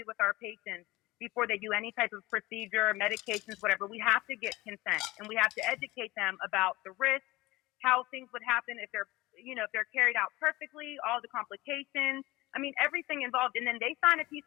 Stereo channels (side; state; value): right; quieter; 20.0 dB